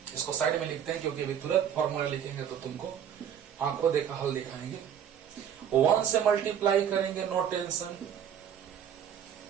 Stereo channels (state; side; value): quieter; left; 8.9 dB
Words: इसको साइड में लिखते हैं क्योंकि अभी तुरंत फॉर्मूला लिखेंगे तो तुमको आंखों देखा हल दिखाएंगे। 1 से मल्टीप्लाई करेंगे, नो टेंशन,